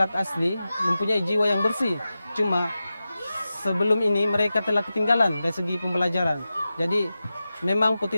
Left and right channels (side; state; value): both; inverted; correlation -0.94